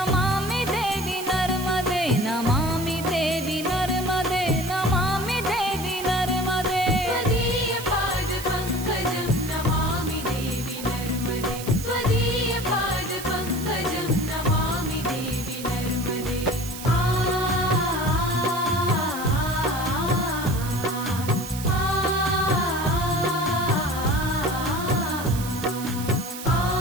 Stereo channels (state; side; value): noise; right; hiss, 11 dB below the sound